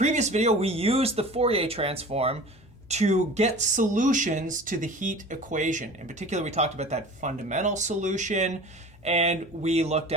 video, we used the Fourier transform to get solutions to the heat equation. In particular, we talked about that fundamental solution, and we looked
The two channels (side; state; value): both; normal; correlation 0.40